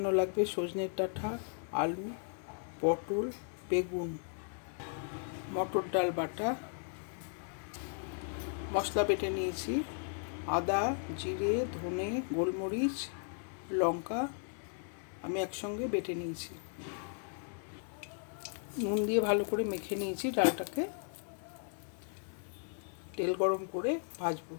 লাগবে সজনের ডাঁটা, আলু, পটল, বেগুন, মটর ডাল বাটা, মশলা বেটে নিয়েছি, আদা, জিরে, ধনে, গোলমরিচ, লঙ্কা আমি একসঙ্গে বেটে নিয়েছি। নুন দিয়ে ভালো করে মেখে নিয়েছি ডালটাকে। তেল গরম করে ভাজবো।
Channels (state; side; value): silent; right; 54 dB below the other